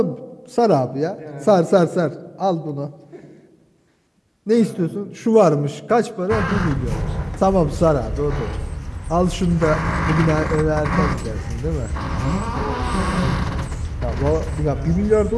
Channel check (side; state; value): both; identical; correlation 1.00